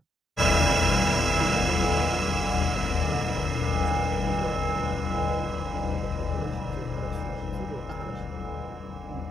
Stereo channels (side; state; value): both; normal; correlation 0.80